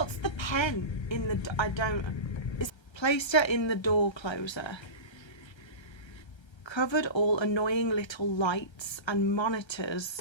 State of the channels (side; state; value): right; late; 1.3 ms